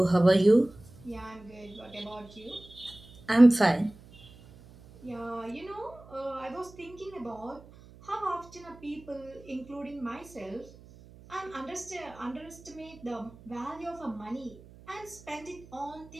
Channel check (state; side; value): noise; right; hum, 21 dB below the sound